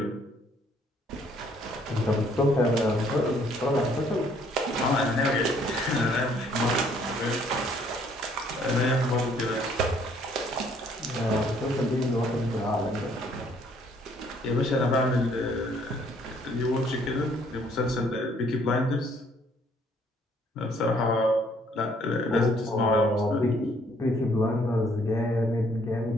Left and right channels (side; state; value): both; normal; correlation 0.64